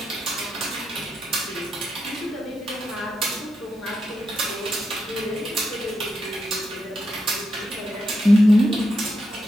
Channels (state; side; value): normal; both; correlation 0.84